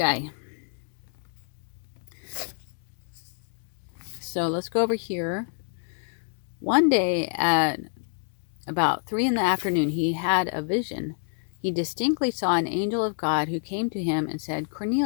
So let's go over here. One day at about 3 p.m, he had a vision. He distinctly saw an angel of God who came to him and said,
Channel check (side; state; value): right; silent; digital silence